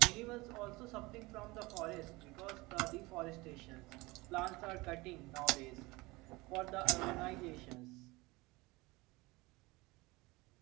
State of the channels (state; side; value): quieter; left; 22.5 dB